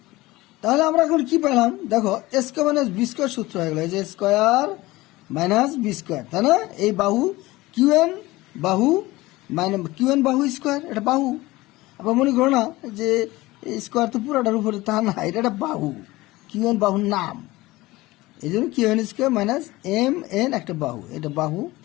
তাহলে আমরা এখন কি পেলাম দেখো, A square minus B square সূত্র হয়ে গেল, এই যে স্কোয়ার মাইনাস বি স্কোয়ার, তাই না? এই বাহু কিউ এন বাহু মাইনাস কিউ এন বাহু স্কোয়ার, এটা বাহু। আবার মনে করো না যে স্কোয়ার তো পুরোটার উপরে, তা না, এটা একটা বাহু, কিউ এন বাহুর নাম, এই জন্য Q N square minus M N একটা বাহু, এটা বাহু।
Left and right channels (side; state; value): right; quieter; 19.5 dB